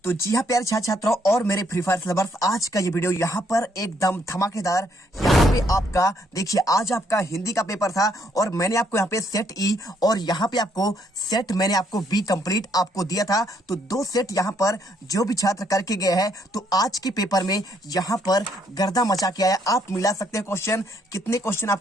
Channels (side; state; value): both; normal; correlation 0.71